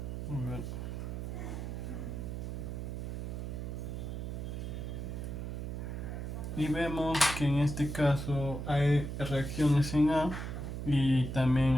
A ver. Y vemos que en este caso hay reacciones en A y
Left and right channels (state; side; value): noise; right; hum, 5 dB below the sound